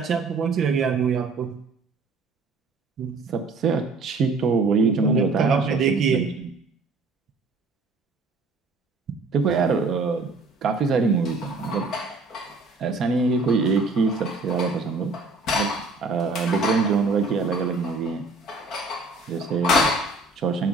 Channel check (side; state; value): left; quieter; 3.5 dB